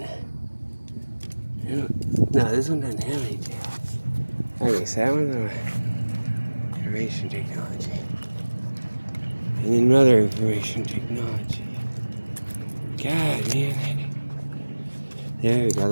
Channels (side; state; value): both; inverted; correlation -1.00